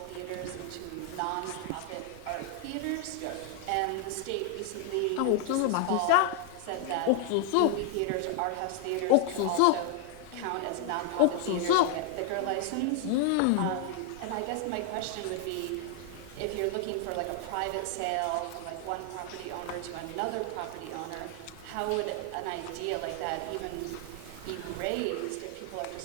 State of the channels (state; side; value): different; both; correlation 0.00